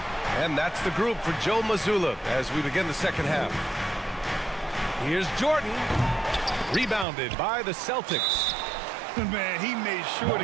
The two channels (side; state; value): left; drops out; at 7.1 s